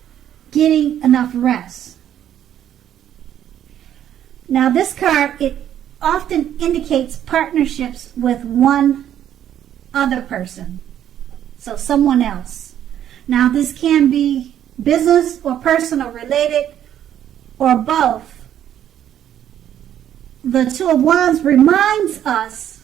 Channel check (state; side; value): quieter; left; 10.6 dB